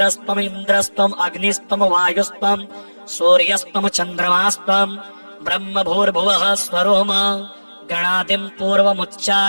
इन्द्रस्त्वं अग्निस्त्वं वायुस्त्वं सूर्यस्त्वं चन्द्रमास्त्वं ब्रह्म भूर्भुवः स्वरोम गणादिं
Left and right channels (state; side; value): inverted; both; correlation -1.00